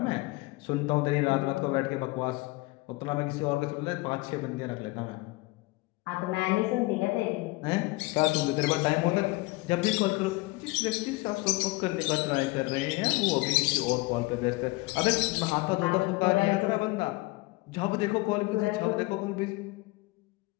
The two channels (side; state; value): right; quieter; 23.1 dB